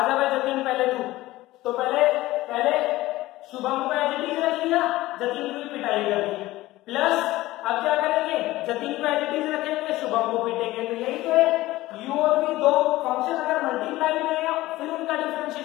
जा भाई जतिन पहले तू, तो पहले शुभम को एज इट इज रख लिया, जतिन की पिटाई कर दी, प्लस अब क्या करेंगे, जतिन को एज इट इज रखेंगे, शुभम को पीटेंगे, तो यही तो है, u और v दो फंक्शन अगर मल्टीप्लाई में है फिर उनका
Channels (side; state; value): right; quieter; 17.5 dB